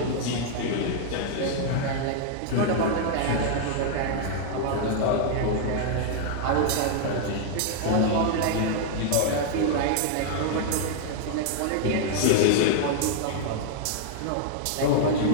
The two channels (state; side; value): different; both; correlation 0.00